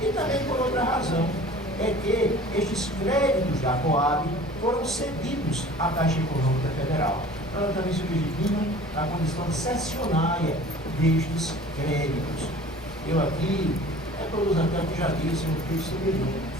E também por outra razão, é que estes créditos da Coab foram cedidos à Caixa Econômica Federal. Ela também se legitima na condição cessionária destes créditos. Eu aqui, todos até que já disse no texto superior,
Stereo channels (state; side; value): normal; both; correlation 0.45